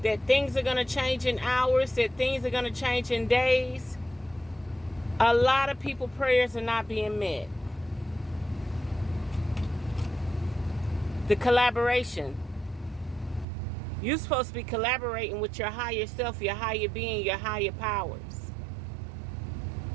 that things are going to change in hours, that things are going to change in days. A lot of people's prayers are not being met. The collaboration. You're supposed to be collaborating with your higher self, your higher being, your higher powers.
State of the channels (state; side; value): drops out; left; at 13.5 s